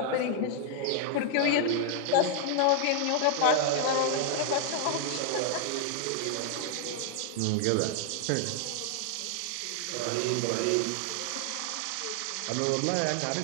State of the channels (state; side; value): different; both; correlation 0.00